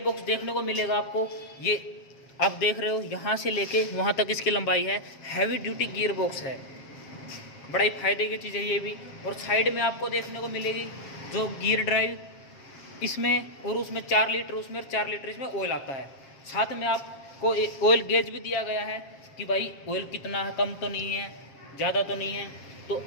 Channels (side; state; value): right; late; 7.5 ms